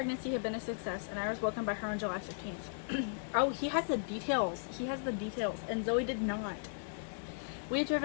had been a success, and I was welcomed by her on July 15th. Oh, he has the details. He has the details, and Zoe did not. We had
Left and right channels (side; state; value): right; silent; 54 dB below the other